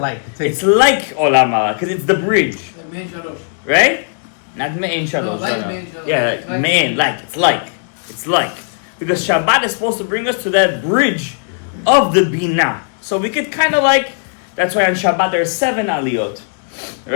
It's like Olam Haba, because it's the bridge. Right? Not Me'ein Shalosh. Yeah, Me'ein, it's like. Because Shabbat is supposed to bring us to that bridge of the Bina. So we could kind of that's why on Shabbat there's 7 aliyot.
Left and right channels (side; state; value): right; silent; digital silence